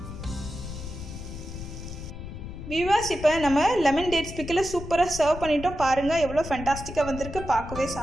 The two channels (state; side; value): noise; left; rumble, 10 dB below the sound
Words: வியூவர்ஸ், இப்போ நம்ம லெமன் டேட்ஸ் பிக்கில் சூப்பராக சர்வ் பண்ணிட்டோம். பாருங்கள் எவ்வளோ ஃபேண்டாஸ்டிக்காக வந்திருக்கு. பார்க்கவே